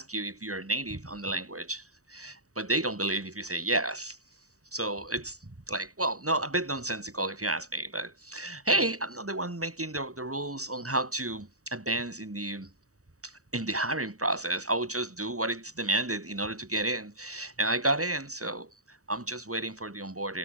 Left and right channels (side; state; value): left; late; 0.66 ms